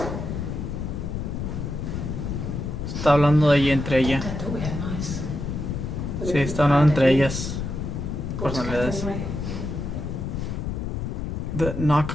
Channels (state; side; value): noise; left; rumble, 4 dB below the sound